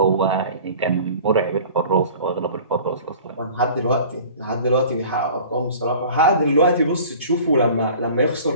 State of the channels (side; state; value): both; inverted; correlation -0.44